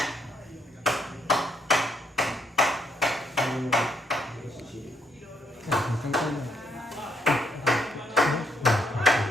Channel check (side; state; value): both; normal; correlation 0.72